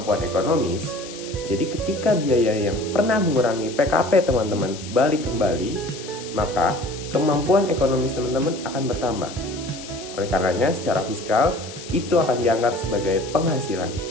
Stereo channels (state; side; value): noise; left; hiss, 14 dB below the sound